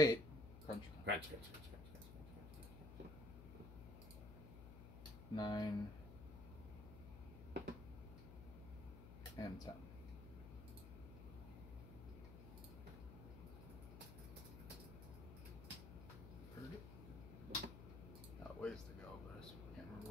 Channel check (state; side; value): noise; left; hum, 11 dB below the sound